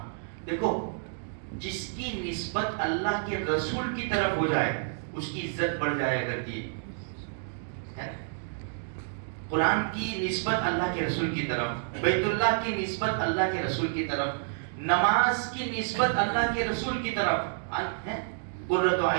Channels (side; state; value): left; silent; digital silence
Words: دیکھو جس کی نسبت اللہ کے رسول کی طرف ہو جائے اس کی عزت بڑھ جایا کرتی ہے. قرآن کی نسبت اللہ کے رسول کی طرف، بیت اللہ کی نسبت اللہ کے رسول کی طرف، نماز کی نسبت اللہ کے رسول کی طرف. قرۃ